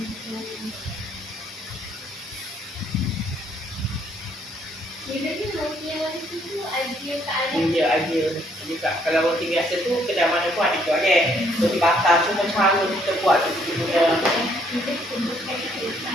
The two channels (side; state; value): both; normal; correlation 0.67